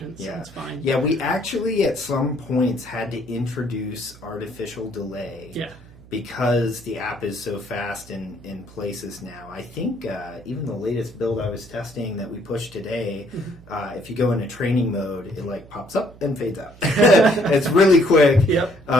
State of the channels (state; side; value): noise; right; hum, 22 dB below the sound